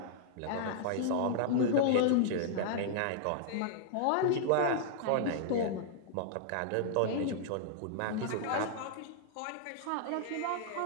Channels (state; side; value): different; both; correlation -0.01